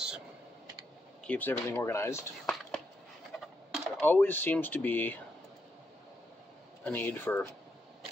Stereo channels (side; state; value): both; normal; correlation 0.80